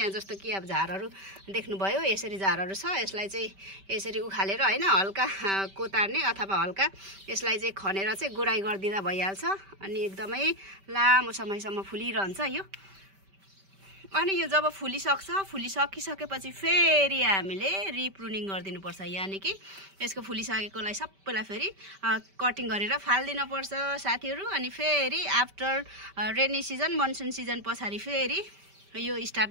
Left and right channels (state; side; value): late; left; 5.1 ms